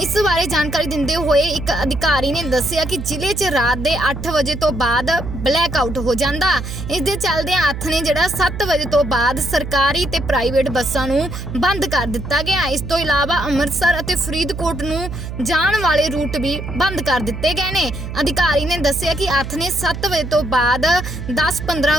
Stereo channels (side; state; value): right; noise; hum, 7 dB below the sound